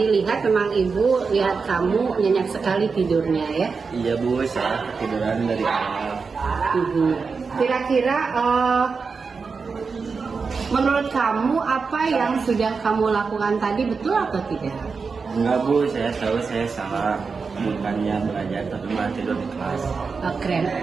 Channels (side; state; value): left; quieter; 5.0 dB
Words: lihat memang ibu lihat kamu nyenyak sekali tidurnya ya. Iya Bu, saya ketiduran dari awal. Kira-kira menurut kamu apa yang sudah kamu lakukan tadi betul atau tidak? Enggak Bu, saya tahu saya salah. Bukannya belajar tapi malah tidur di kelas. Keren.